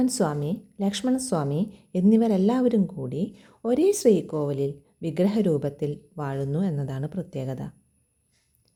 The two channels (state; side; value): identical; both; correlation 1.00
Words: സ്വാമി, ലക്ഷ്മണസ്വാമി എന്നിവരെല്ലാവരും കൂടി ഒരേ ശ്രീകോവിലിൽ വിഗ്രഹരൂപത്തിൽ വാഴുന്നു എന്നതാണ് പ്രത്യേകത.